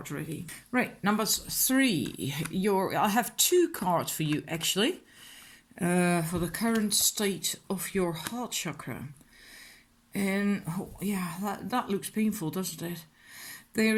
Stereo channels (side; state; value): both; identical; correlation 1.00